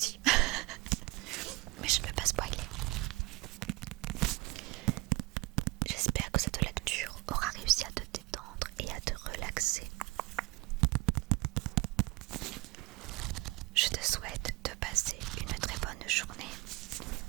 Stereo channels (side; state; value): left; quieter; 23.4 dB